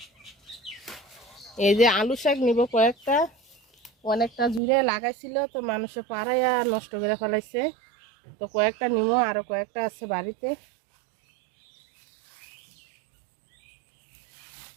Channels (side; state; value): left; drops out; at 4.6 s